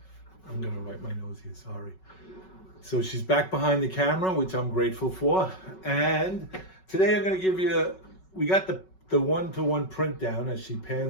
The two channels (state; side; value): late; right; 5.3 ms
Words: I'm gonna wipe my nose here, sorry. So she's back behind the camera, which I'm grateful for. And today I'm gonna give you, we got the one-to-one print down as she